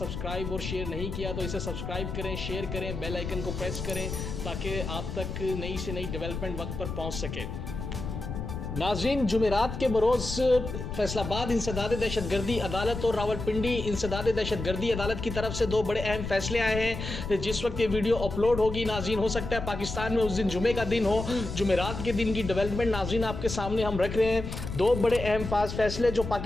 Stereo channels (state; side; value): noise; left; rumble, 6 dB below the sound